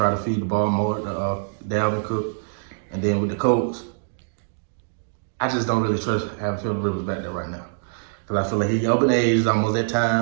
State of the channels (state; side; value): silent; left; digital silence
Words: to feed the ball more to Dalvin Cook. And then with the Colts, I just don't really trust having Phillip Rivers back there right now. Because I feel like he's up in age, it's almost that